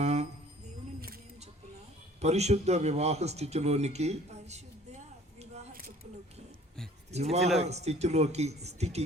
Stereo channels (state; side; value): normal; both; correlation 0.52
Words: పరిశుద్ధ వివాహ స్థితిలోకి